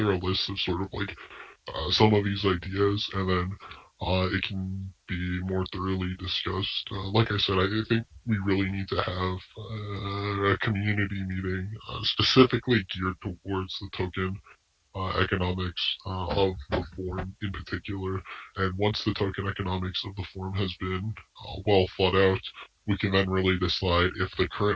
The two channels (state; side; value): identical; both; correlation 1.00